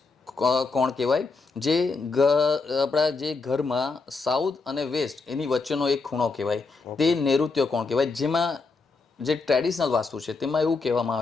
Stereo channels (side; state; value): right; quieter; 4.1 dB